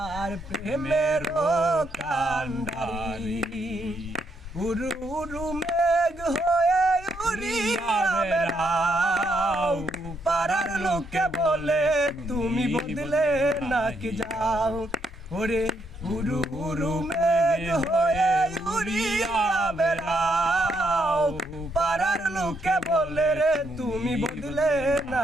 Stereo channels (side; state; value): both; normal; correlation 0.76